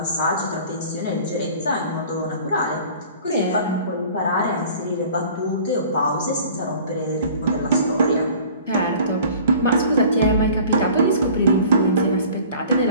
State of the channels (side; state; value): both; inverted; correlation -0.47